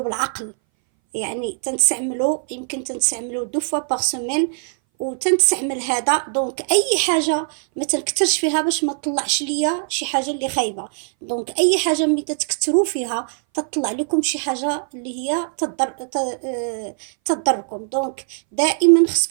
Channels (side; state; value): left; silent; 61 dB below the other